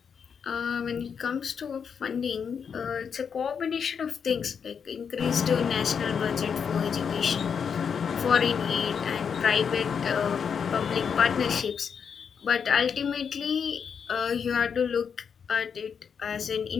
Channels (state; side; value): quieter; right; 6.8 dB